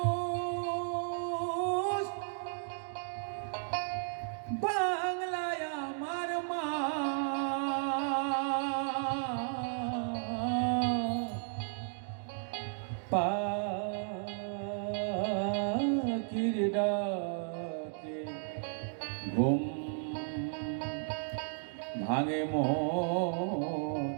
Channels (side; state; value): left; silent; digital silence